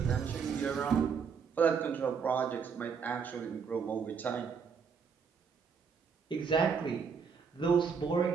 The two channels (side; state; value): left; quieter; 6.2 dB